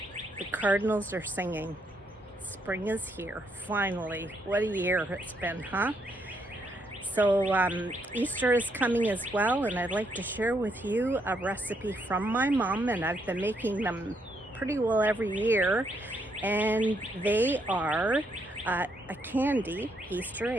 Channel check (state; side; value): normal; both; correlation 0.75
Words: The cardinals are singing. Spring is here, finally. What a year it's been, huh? So Easter is coming as well, and I'd like to share with you a recipe from my mom, and I've been making them pretty well every year. And they are a candy Easter